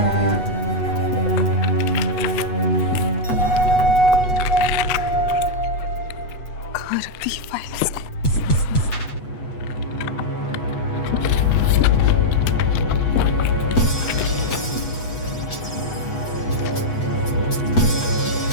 कहाँ रख दी ये फाइल इसने?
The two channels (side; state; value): right; late; 8.2 ms